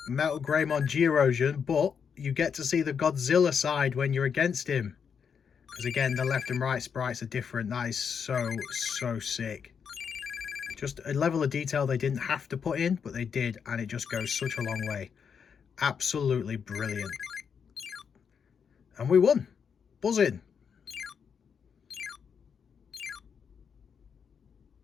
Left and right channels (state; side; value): quieter; right; 6.8 dB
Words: Metal Greymon G Erosion, but you get to see the Godzilla side when you're against him. Because again, the left and right sprites are different. That is so sick. Just a level of detail they didn't have to put in, but they did, and it just goes such a long way. Absolutely brilliant. And we won. Buzzing.